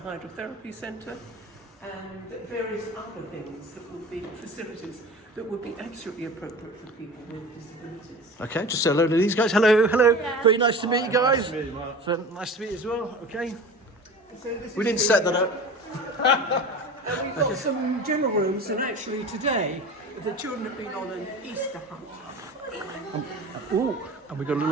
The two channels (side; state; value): both; normal; correlation 0.35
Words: centre and various other things that would be facilities that would be absolutely appropriate for people with disabilities. Okay, just say hello to these guys. Hello, hello. Yeah. Very nice to meet you guys. Nice to meet you, Mark. So, nice to meet you as well. Okay. So this We is didn't the, set that up. And we've got some general rooms, and actually today the children have been on an Easter hunt. Ooh, and we've got a